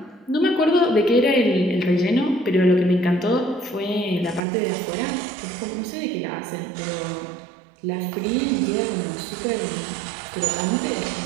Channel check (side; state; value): left; drops out; at 4.4 s